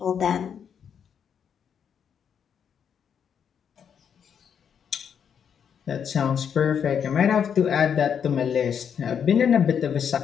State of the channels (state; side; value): quieter; right; 7.8 dB